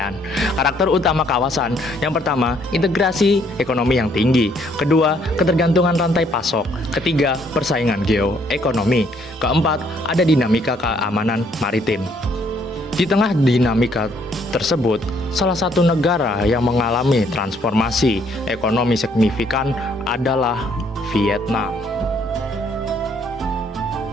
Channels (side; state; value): both; normal; correlation 0.67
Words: Karakter utama kawasan, yang pertama, integrasi ekonomi yang tinggi. Kedua, ketergantungan rantai pasok. Ketiga, persaingan geoekonomi. Keempat, ada dinamika keamanan maritim. Di tengah dinamika tersebut, salah satu negara yang mengalami transformasi ekonomi signifikan adalah Vietnam.